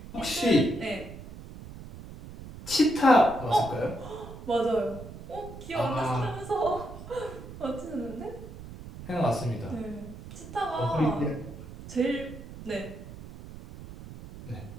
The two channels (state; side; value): noise; right; rumble, 14 dB below the sound